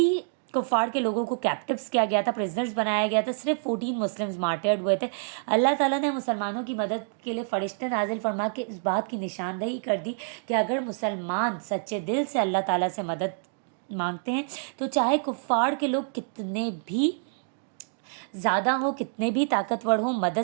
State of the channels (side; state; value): left; silent; digital silence